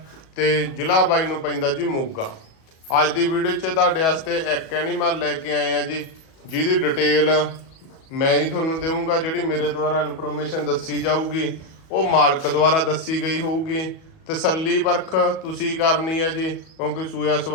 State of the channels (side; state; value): right; late; 37 ms